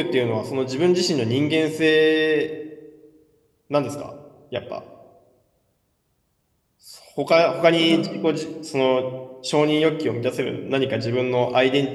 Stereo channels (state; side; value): identical; both; correlation 1.00